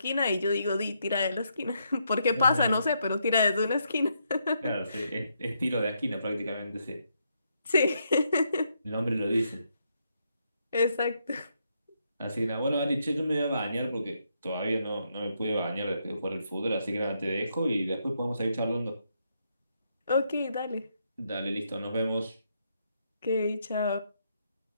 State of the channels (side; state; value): both; inverted; correlation -0.78